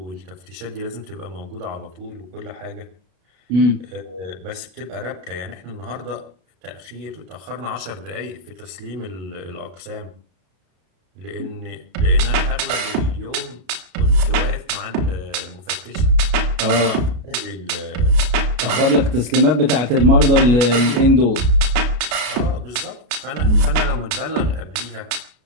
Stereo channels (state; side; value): late; left; 33 ms